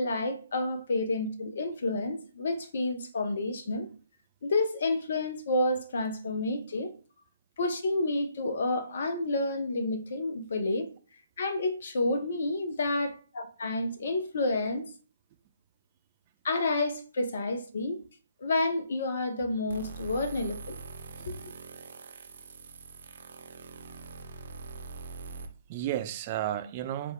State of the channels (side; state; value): both; inverted; correlation -0.69